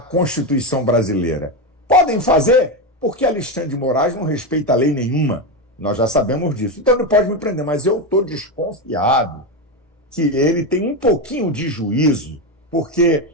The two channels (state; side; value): normal; both; correlation 0.12